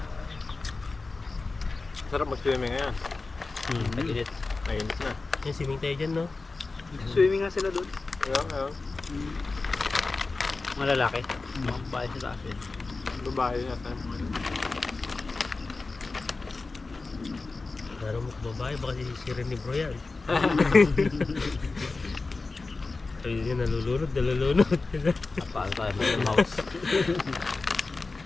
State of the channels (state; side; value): quieter; right; 3.7 dB